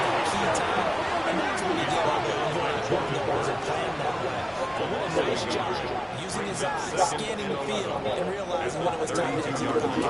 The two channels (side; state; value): both; identical; correlation 1.00